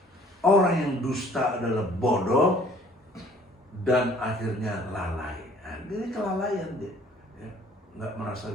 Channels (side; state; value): both; normal; correlation 0.55